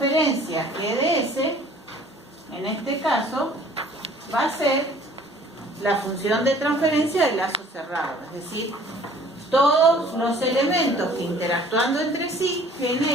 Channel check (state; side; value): normal; both; correlation 0.53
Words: GDS, en este caso, va a ser la función de transferencia del lazo cerrado. Es decir, todos los elementos que interactuando entre sí